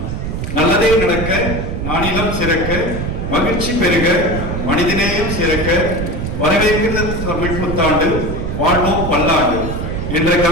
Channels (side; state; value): right; noise; rumble, 4 dB below the sound